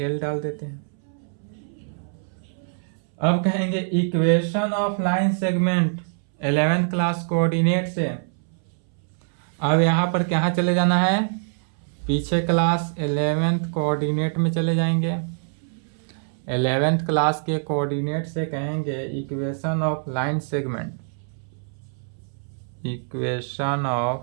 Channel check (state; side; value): silent; left; 62 dB below the other